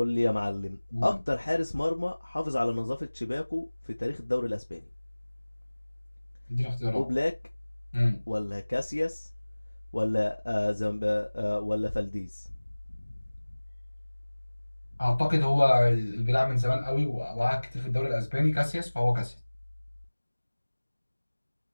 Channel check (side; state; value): both; inverted; correlation -1.00